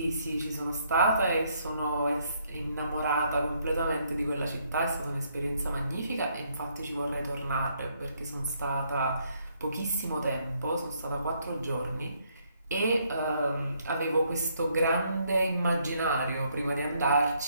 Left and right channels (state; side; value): inverted; both; correlation -0.71